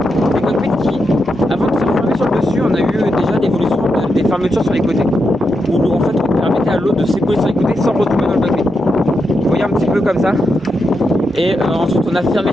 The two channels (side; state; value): both; normal; correlation 0.85